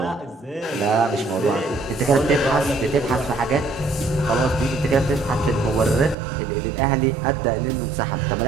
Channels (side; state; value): left; drops out; at 6.2 s